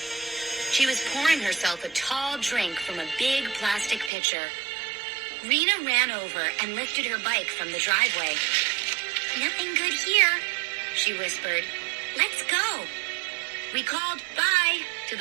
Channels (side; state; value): left; drops out; at 4.1 s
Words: She was pouring herself a tall drink from a big plastic pitcher. Rena ran over and lifted her bike from the driveway. "Nothing good here," she whispered. "Let's go." We called bye to